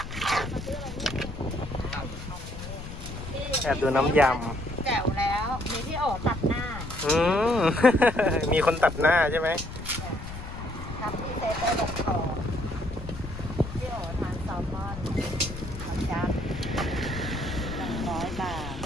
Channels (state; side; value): noise; left; rumble, 10 dB below the sound